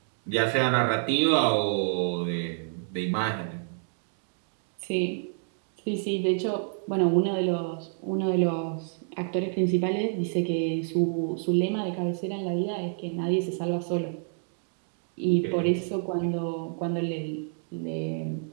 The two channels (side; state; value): left; silent; 59 dB below the other